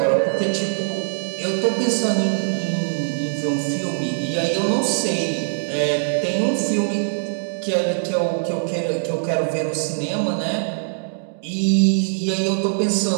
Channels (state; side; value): silent; left; digital silence